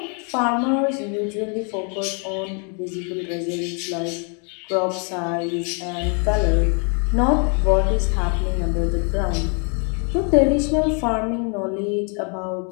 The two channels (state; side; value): quieter; right; 38.9 dB